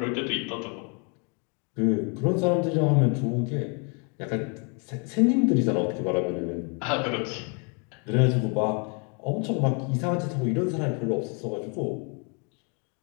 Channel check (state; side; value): quieter; right; 35.8 dB